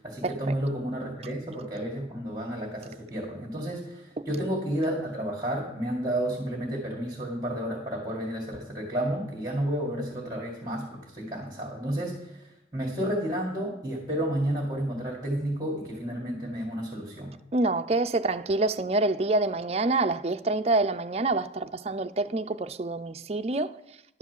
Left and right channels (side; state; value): both; normal; correlation 0.38